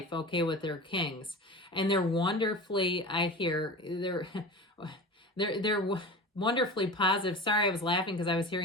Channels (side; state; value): both; normal; correlation 0.32